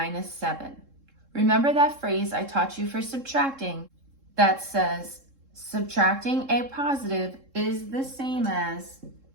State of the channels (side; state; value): left; late; 3.7 ms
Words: 7. Remember that phrase I taught you for subtracting that says subtracting a positive is the same as